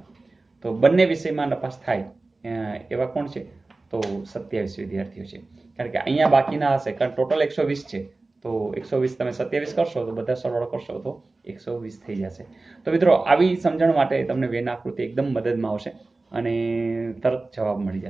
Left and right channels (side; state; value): left; quieter; 3.3 dB